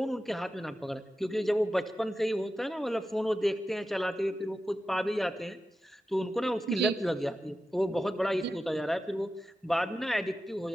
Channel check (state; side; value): normal; both; correlation 0.92